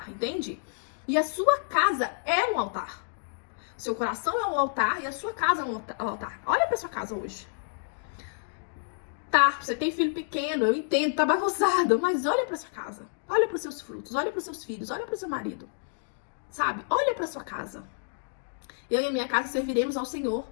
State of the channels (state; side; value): silent; right; digital silence